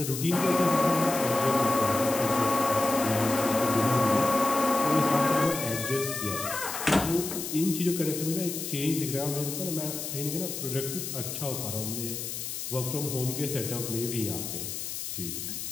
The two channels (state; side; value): noise; left; hiss, 6 dB below the sound